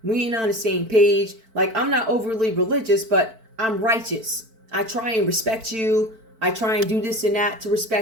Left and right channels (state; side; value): late; left; 4.5 ms